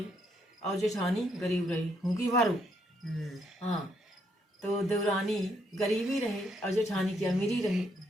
और जेठानी गरीब रही। भूखी भारू। हाँ, तो देवरानी गरीबी रहे और जेठानी की अमीरी रहे।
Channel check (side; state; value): both; normal; correlation 0.74